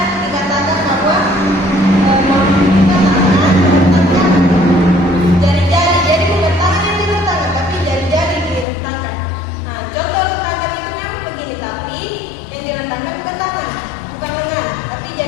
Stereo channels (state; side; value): drops out; right; at 8.7 s